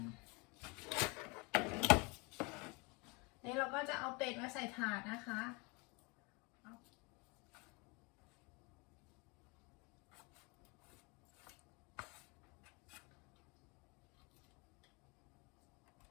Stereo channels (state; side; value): quieter; right; 28.8 dB